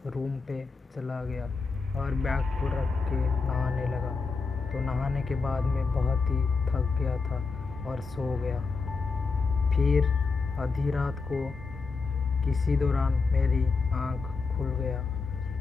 रूम पे चला गया और बैग को रख के नहाने लगा। तो नहाने के बाद मैं बहुत ही थक गया था और सो गया। फिर आधी रात को किसी दौरान मेरी आँख खुल गया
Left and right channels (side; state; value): right; quieter; 4.4 dB